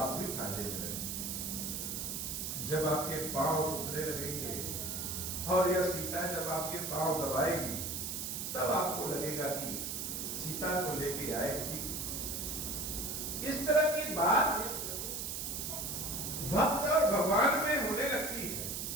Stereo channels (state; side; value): noise; right; hiss, 3 dB below the sound